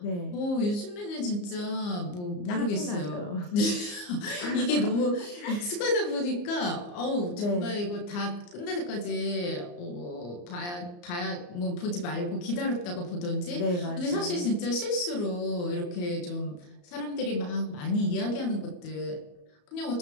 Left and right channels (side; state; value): right; late; 34 ms